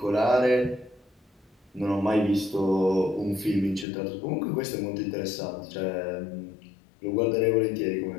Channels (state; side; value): drops out; right; at 3.9 s